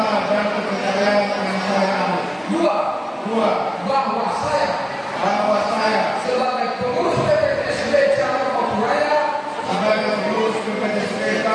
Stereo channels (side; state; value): both; identical; correlation 1.00